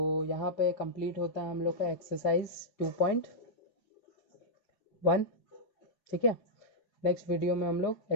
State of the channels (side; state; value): right; late; 4.8 ms